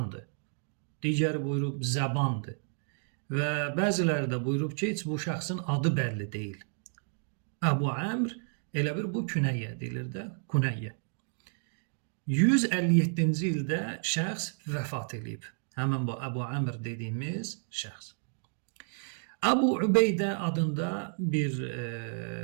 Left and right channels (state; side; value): silent; left; 57 dB below the other